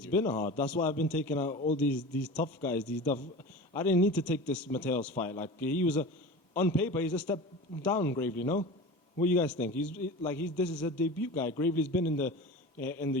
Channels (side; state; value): both; normal; correlation 0.33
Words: been hard. That's why I've been taking out all these tough guys. I didn't need to take this Mateos fight. Like he was on paper, he's a step down, Gravely. No, what do you guys think? This is a debut guy. Gravely's been in the